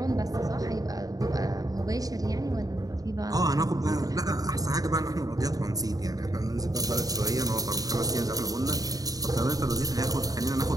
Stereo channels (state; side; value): late; left; 0.18 ms